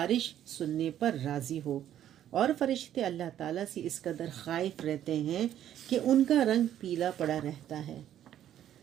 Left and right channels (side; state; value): left; quieter; 11.1 dB